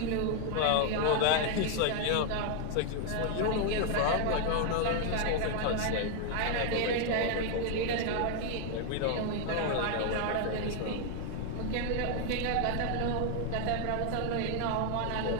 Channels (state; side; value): different; both; correlation 0.01